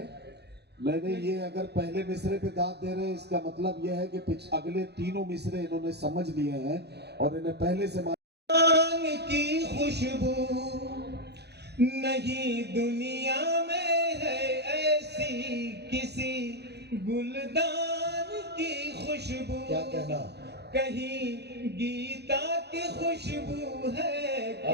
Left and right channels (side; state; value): left; late; 0.48 ms